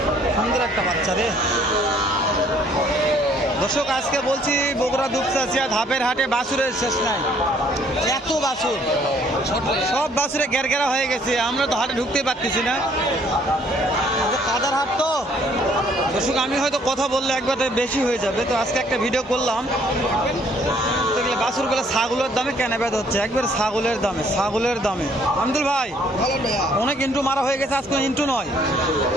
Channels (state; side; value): normal; both; correlation 0.62